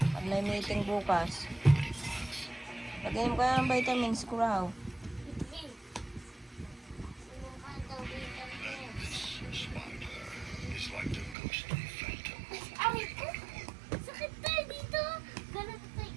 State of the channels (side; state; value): left; drops out; at 11.4 s